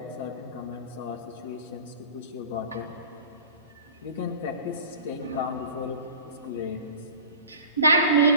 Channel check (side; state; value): both; inverted; correlation -0.39